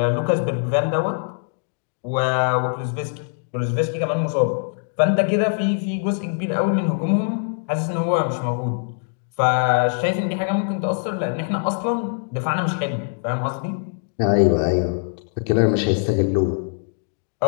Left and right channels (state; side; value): silent; right; digital silence